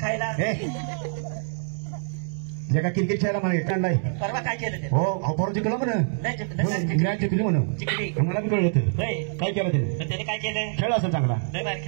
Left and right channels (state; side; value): silent; left; digital silence